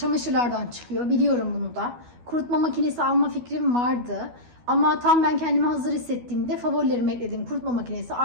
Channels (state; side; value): late; left; 12 ms